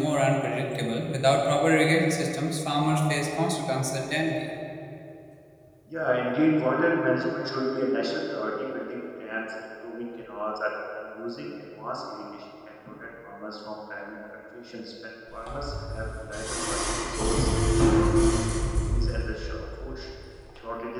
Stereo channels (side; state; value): both; identical; correlation 1.00